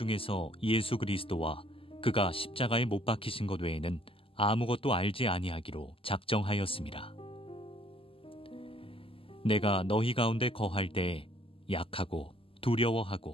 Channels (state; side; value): late; right; 0.26 ms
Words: 예수 그리스도와 그가 십자가에 못 박히신 것 외에는 아무것도 알지 아니하기로 작정하였음이라. 내가 너희 가운데 거할 때 약하고